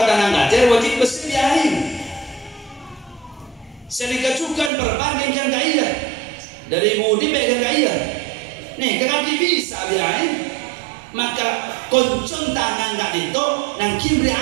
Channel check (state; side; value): drops out; left; at 4.7 s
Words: tangan kacir wajib bersih diain sedikit juga perbandingkan kaya dari mudi bagian kaya nih kekaki bisa diain maka koncon tangan gak itu nangkin